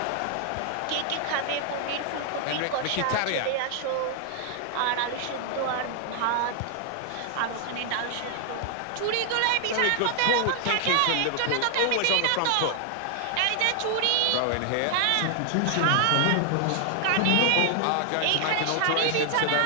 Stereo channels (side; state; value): both; different; correlation 0.00